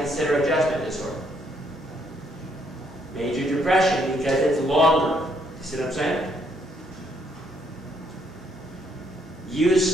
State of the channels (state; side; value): normal; both; correlation 0.71